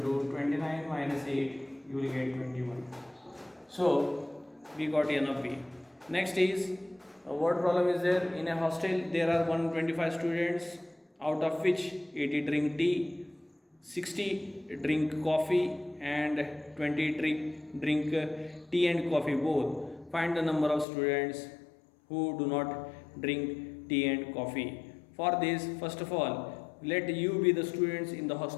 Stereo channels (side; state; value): right; drops out; at 20.9 s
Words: to 29 minus 8, you will get 21. So we got n of b. Next is what problem is there? In a hostel there are 125 students, out of which 80 drink tea, 60 drink coffee and 20 drink tea and coffee both. Find the number of students who do not drink tea and coffee. For this, first of all, let you be the students in the